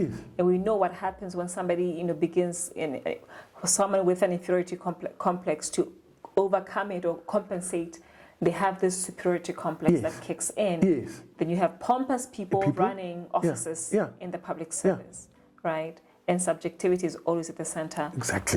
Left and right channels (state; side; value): identical; both; correlation 1.00